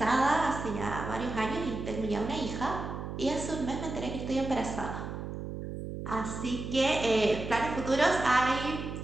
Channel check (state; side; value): noise; right; hum, 7 dB below the sound